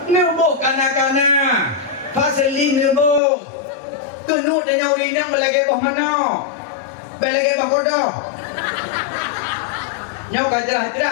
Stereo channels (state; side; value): drops out; right; at 3.2 s